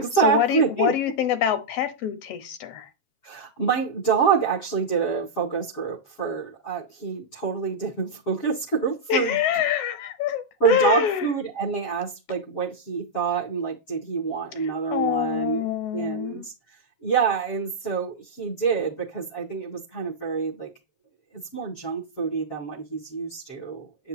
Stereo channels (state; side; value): late; right; 7.4 ms